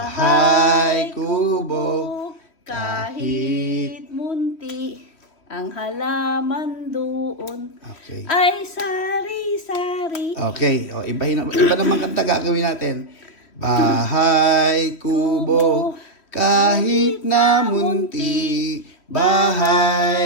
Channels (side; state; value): right; late; 3.0 ms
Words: kubo, kahit munti, ang halaman doon Okay. ay sari-sari. Okay, o iba naman kanta gagawin natin. Bahay kubo, kahit na munti.